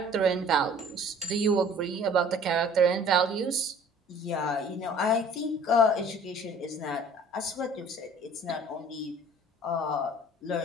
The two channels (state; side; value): normal; both; correlation 0.50